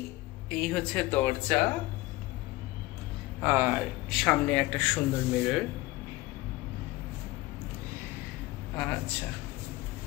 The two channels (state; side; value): quieter; right; 19.5 dB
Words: এই হচ্ছে দরজা, আর সামনে একটা সুন্দর মিরর। আচ্ছা,